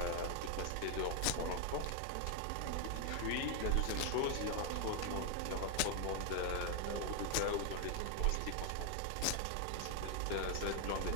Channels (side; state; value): both; different; correlation 0.01